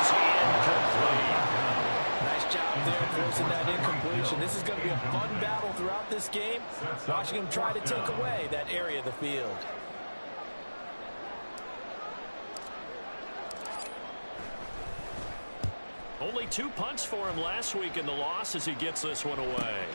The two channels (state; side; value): inverted; both; correlation -1.00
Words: incomplete. Nice job there forcing that incompletion. This is going to be a fun battle throughout this game. Watching him try to take away that area of the field. Only 2 punts for him last week in the loss as he gets this one away.